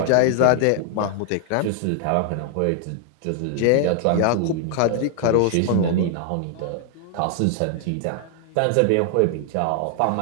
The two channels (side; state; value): both; different; correlation 0.00